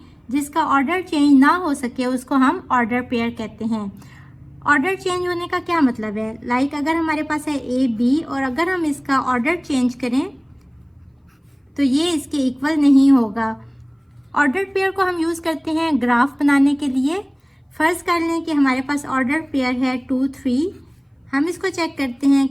जिसका ऑर्डर चेंज ना हो सके उसको हम ऑर्डर पेयर कहते हैं। ऑर्डर चेंज होने का क्या मतलब है? लाइक अगर हमारे पास है ए बी और अगर हम इसका ऑर्डर चेंज करें तो ये इसके इक्वल नहीं होगा। ऑर्डर पेयर को हम यूज़ करते हैं ग्राफ बनाने के लिए। फर्ज कर लें कि हमारे पास ऑर्डर पेयर है 2 3। हम इसको चेक करते हैं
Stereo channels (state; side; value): identical; both; correlation 1.00